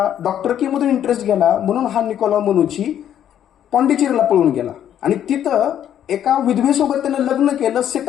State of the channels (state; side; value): quieter; right; 10.2 dB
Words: डॉक्टरकीमधून इंटरेस्ट गेला म्हणून हा निकोलाव मनोची पॉंडिचेरीला पळून गेला आणि तिथं एका विधवेसोबत त्यानं लग्न केलं,